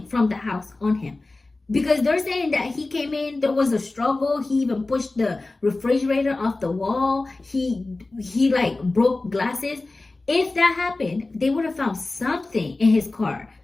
from the house on him. Because they're saying that he came in, there was a struggle. He even pushed the refrigerator off the wall. He like broke glasses. If that happened, they would have found something in his car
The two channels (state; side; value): quieter; right; 3.2 dB